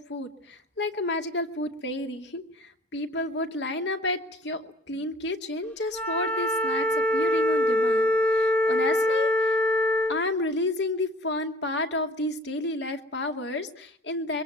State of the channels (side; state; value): both; normal; correlation 0.48